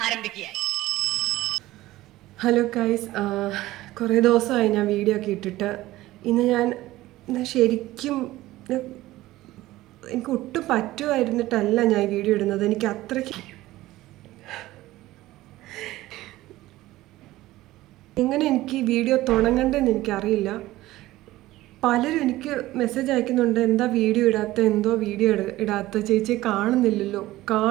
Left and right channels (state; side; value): quieter; left; 16.8 dB